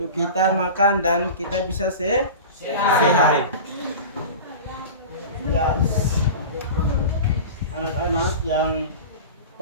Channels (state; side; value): inverted; both; correlation -0.33